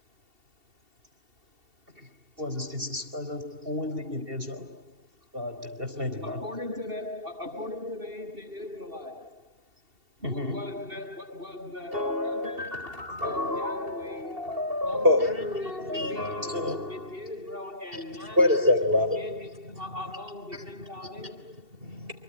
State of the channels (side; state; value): left; late; 2.7 ms